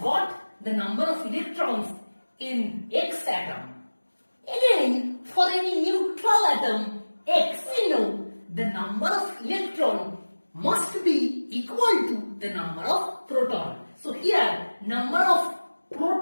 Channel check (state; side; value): inverted; both; correlation -1.00